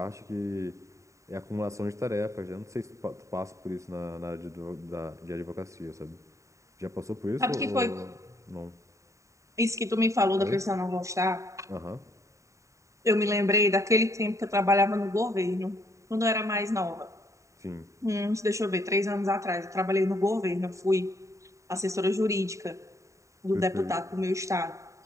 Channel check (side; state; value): left; late; 0.15 ms